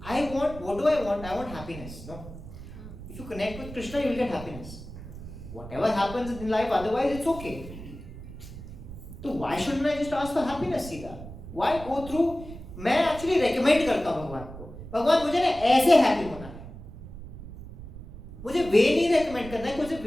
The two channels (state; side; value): noise; right; rumble, 13 dB below the sound